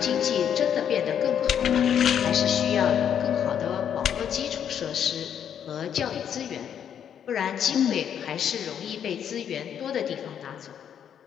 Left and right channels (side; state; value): right; quieter; 8.8 dB